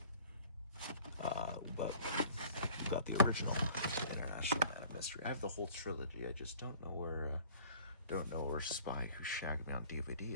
We got the original, the International Man of Mystery. I have the whole trilogy. I just don't know where Spy Who Shagged Me on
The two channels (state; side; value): inverted; both; correlation -0.50